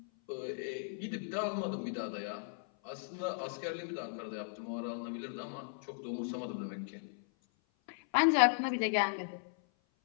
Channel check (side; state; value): right; silent; 53 dB below the other